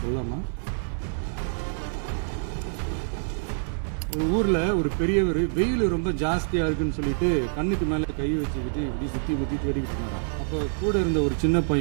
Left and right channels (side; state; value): left; silent; digital silence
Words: சொல்லாமா? ஒரு ஊர்ல ஒரு பெரியவர் வெயில் ரொம்ப ஜாஸ்தியா இருக்குன்னு சொல்லிட்டு கண்ணுக்கு மேல கை வச்சுக்கிட்டு இப்படி சுத்தி முத்தி தேடிக்கிட்டு இருந்தாராம். அப்ப கூட இருந்த ஒரு சின்ன